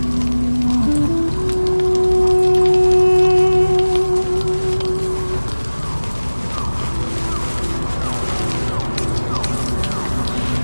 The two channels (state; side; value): inverted; both; correlation -1.00